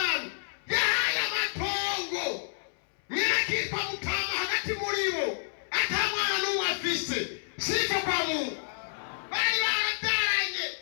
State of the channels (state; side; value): silent; right; 58 dB below the other